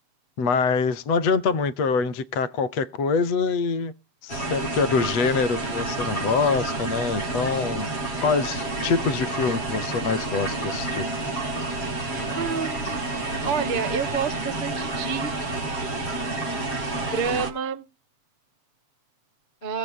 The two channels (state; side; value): late; right; 7.4 ms